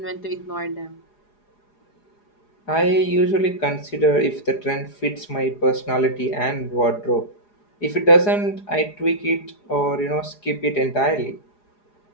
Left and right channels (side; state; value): right; late; 4.8 ms